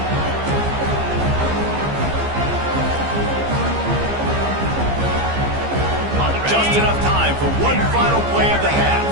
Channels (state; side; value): late; left; 15 ms